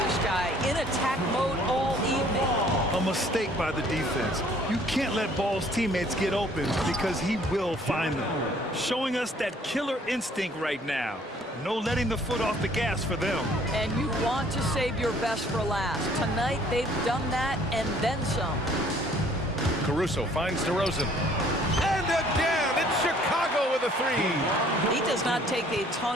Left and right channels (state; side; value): normal; both; correlation 0.58